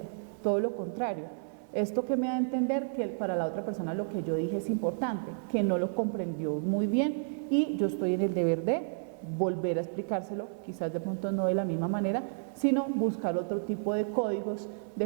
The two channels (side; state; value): left; silent; digital silence